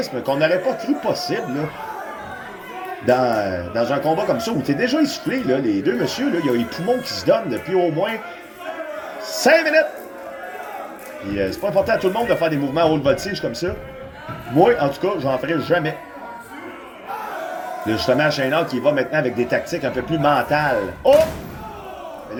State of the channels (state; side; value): identical; both; correlation 1.00